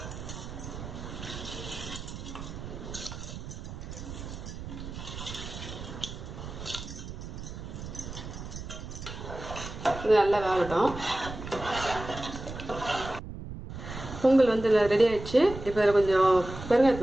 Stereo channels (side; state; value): right; noise; rumble, 10 dB below the sound